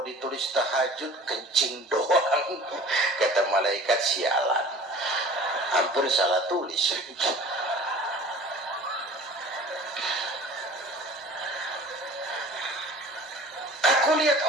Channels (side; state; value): both; normal; correlation 0.45